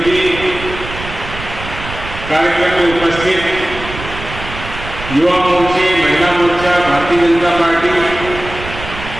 जी, कार्यक्रम में उपस्थित युवा मोर्चे, महिला मोर्चा, भारतीय जनता पार्टी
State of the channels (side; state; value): right; noise; rumble, 11 dB below the sound